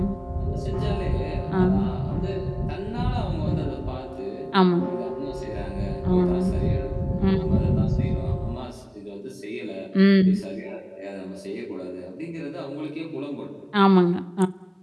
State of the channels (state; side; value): identical; both; correlation 1.00